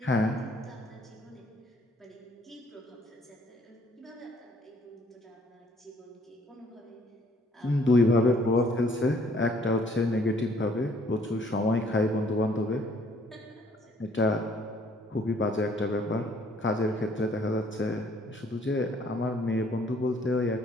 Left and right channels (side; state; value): both; normal; correlation 0.62